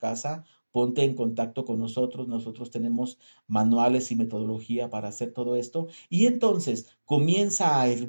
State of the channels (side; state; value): both; inverted; correlation -1.00